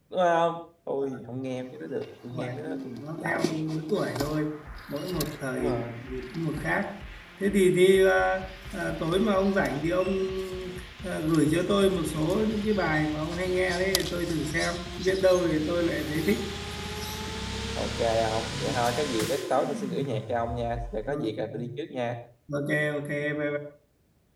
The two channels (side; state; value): both; identical; correlation 1.00